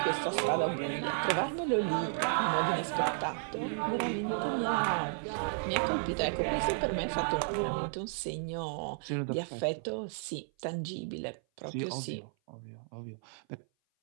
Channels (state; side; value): silent; left; 55 dB below the other